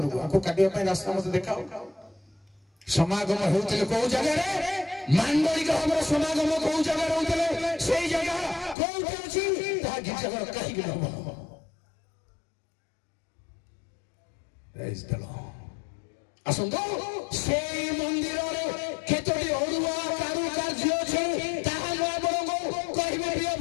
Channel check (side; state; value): right; drops out; at 8.8 s